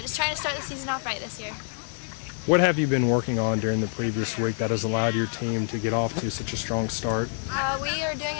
just trying to start the season off right this year. What have you been working on during the previous week that has allowed your team to get off to such a strong start? We are doing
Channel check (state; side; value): silent; right; 60 dB below the other